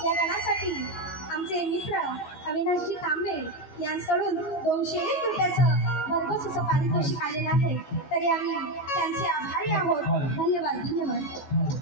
या गणासाठी आमचे मित्र अविनाशजी तांबे यांच्याकडून 201 रुपयाचं भरघोस असं पारितोषिक आलेलं आहे. तरी आम्ही त्यांचे आभारी आहोत. धन्यवाद धन्यवाद.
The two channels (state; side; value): late; right; 14 ms